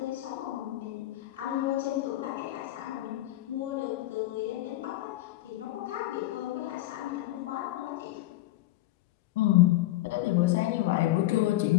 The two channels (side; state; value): right; quieter; 16.4 dB